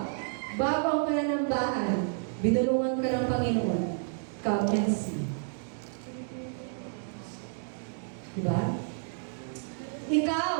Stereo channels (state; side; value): silent; left; digital silence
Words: bago ang pananambahan, binulungan ka ng Panginoon, come and see. Diba? Ikaw,